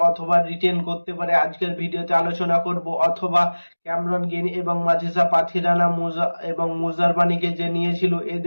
অথবা রিটেন করতে পারে, আজকের ভিডিওতে আলোচনা করব। অথবা ক্যামেরন গ্রিন এবং মাথিসা পাথিরানা এবং মুজারবানিকে যে নিয়েছিল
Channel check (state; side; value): inverted; both; correlation -1.00